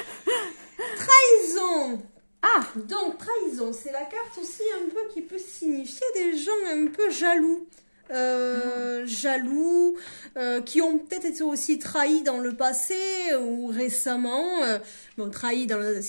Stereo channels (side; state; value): both; inverted; correlation -1.00